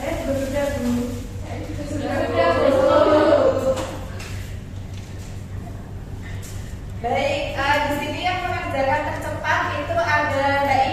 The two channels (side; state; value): both; identical; correlation 1.00